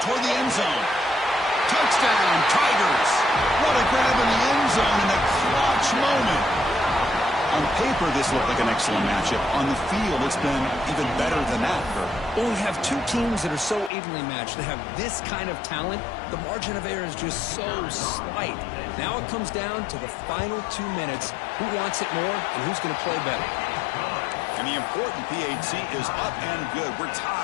toward the end zone. Touchdown, Tigers. What a grab in the end zone in a clutch moment. On paper, this looked like an excellent matchup. On the field, it's been even better than that. Well, we have two teams that are so evenly matched. They have this kind of talent. The margin of error is just so slight. Now it comes down to the final 2 minutes. Who wants it more and who's going to play better? And the important PAT is up and good. We're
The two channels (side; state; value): right; drops out; at 13.9 s